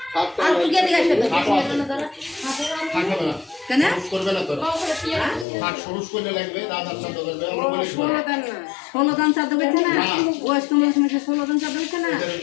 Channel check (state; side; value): drops out; right; at 5.5 s